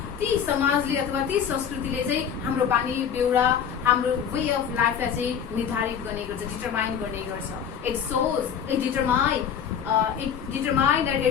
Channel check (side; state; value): right; quieter; 8.0 dB